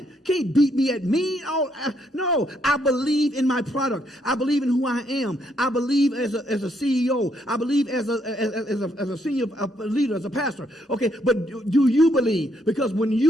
Can't beat me at me. No, I believe in my product. I believe in who I am. I believe as a CEO. I believe as a senior leader, as a pastor. Okay, but do you believe? Because when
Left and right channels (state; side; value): normal; both; correlation 0.73